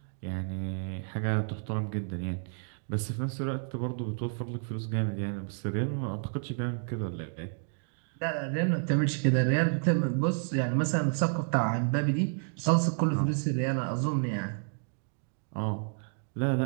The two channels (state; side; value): silent; left; 55 dB below the other